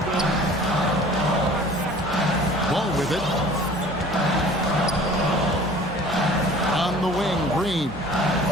Ball with it. On the wing, Green.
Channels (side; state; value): both; normal; correlation 0.47